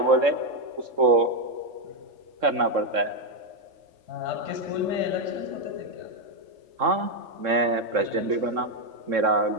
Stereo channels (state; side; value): late; left; 3.7 ms